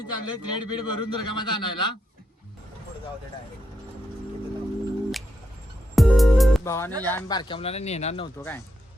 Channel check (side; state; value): both; normal; correlation 0.82